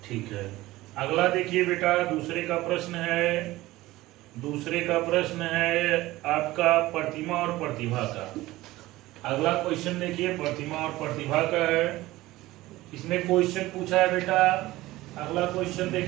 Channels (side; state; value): left; quieter; 17.8 dB